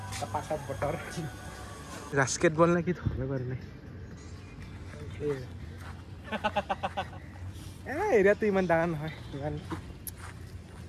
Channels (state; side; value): identical; both; correlation 1.00